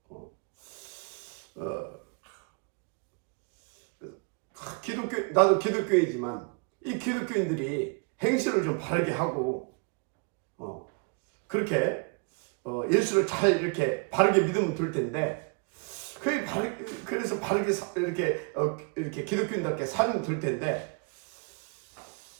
나도 기독교이지만 이 기독교인들이 행실을 좀 바르게 하고, 그렇게 예수를 잘 이렇게 바르게 믿으면 될 텐데, 그래서 바르게 이렇게 기독교인답게 살면 될 텐데,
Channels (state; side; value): quieter; left; 37.1 dB